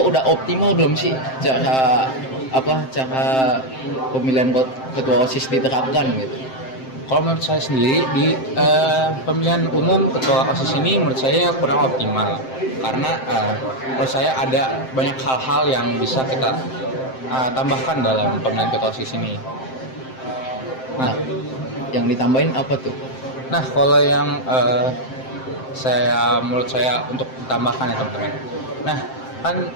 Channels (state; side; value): late; right; 7.7 ms